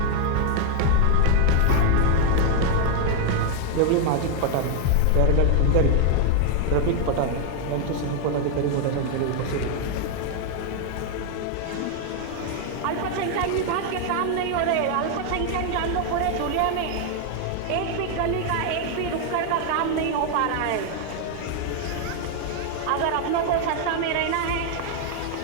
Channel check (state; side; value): different; both; correlation 0.00